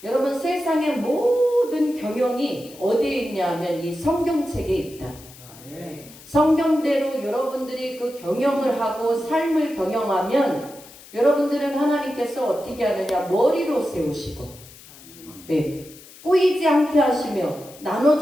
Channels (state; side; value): noise; left; hiss, 20 dB below the sound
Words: 여러분 세상의 모든 경영이 어디에 있냐면 이 성경책에 있다. 성경대로 여러분들이 그 경영을 하고 삶을 경영하면 여러분들은 하나님께서 어떻게 하느냐 머리로 세우시고 예, 꼬이지 않게 하시며